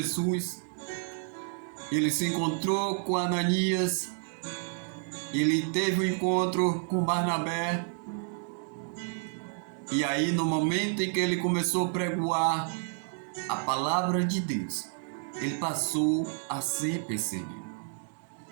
Ele se encontrou com Ananias, ele teve um encontro com Barnabé, e aí no momento em que ele começou a pregoar a palavra de Deus, ele passou a ser perseguido.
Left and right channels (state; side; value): silent; left; 58 dB below the other